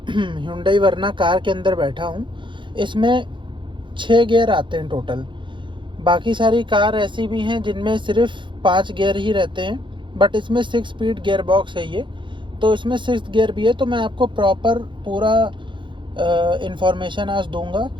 Hyundai वर्ना कार के अंदर बैठा हूँ। इसमें 6 गियर आते हैं टोटल। बाकी सारी कार ऐसी भी हैं जिनमें सिर्फ 5 गियर ही रहते हैं, बट इसमें 6 स्पीड गियर बॉक्स है ये, तो इसमें 6th गियर भी है। तो मैं आपको प्रॉपर पूरा इंफॉर्मेशन आज दूंगा।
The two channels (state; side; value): late; left; 0.23 ms